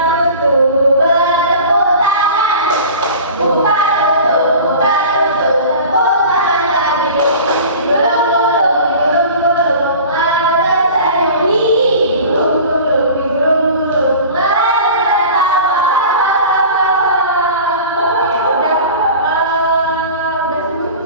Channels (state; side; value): inverted; both; correlation -0.39